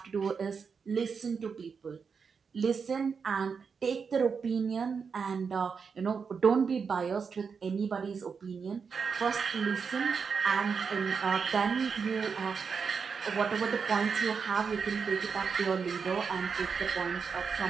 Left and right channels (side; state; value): left; quieter; 5.8 dB